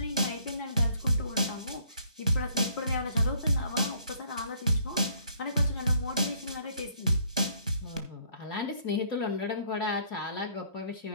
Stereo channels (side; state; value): both; inverted; correlation -0.63